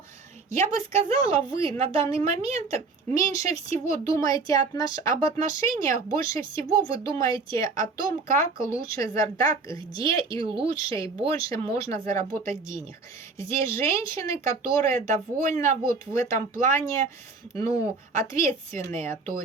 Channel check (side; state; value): left; quieter; 4.1 dB